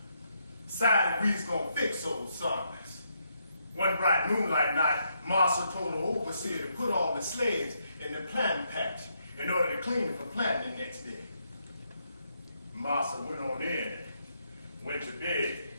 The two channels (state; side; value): inverted; both; correlation -0.77